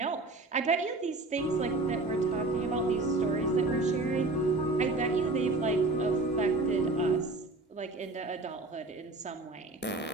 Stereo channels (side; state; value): left; quieter; 3.0 dB